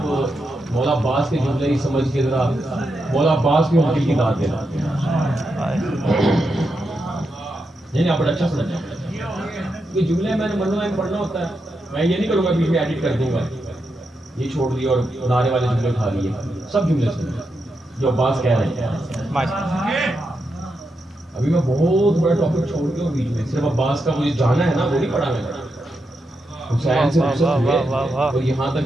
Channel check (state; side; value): normal; both; correlation 0.85